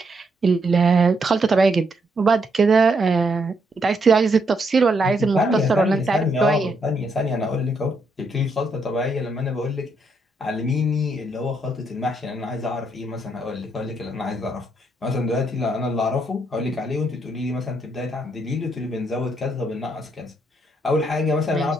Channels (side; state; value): both; normal; correlation 0.76